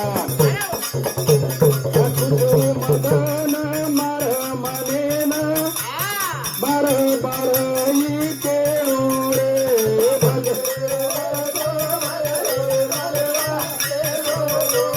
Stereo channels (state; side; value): identical; both; correlation 1.00